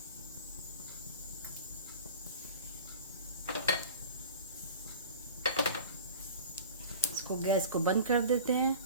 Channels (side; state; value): both; inverted; correlation -0.37